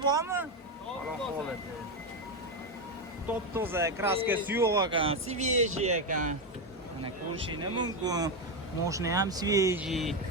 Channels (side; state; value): both; normal; correlation 0.09